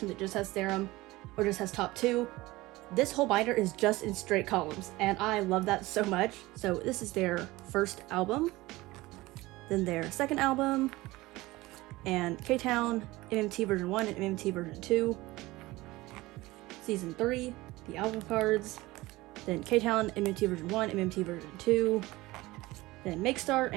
that just has Serum or just has top 2. This whole binder is just in straight columns, and I love that so much. So this is their first album, then their second album, and K-Town, MMT version 1 and MMT version 2, season 3, the album cards, then K-Town, MMT version 1, MMT version 2, then Make Star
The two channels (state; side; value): quieter; left; 19.7 dB